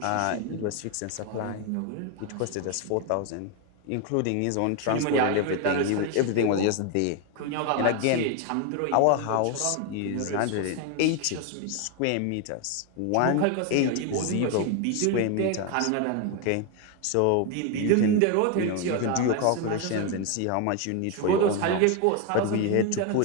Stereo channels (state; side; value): different; both; correlation 0.01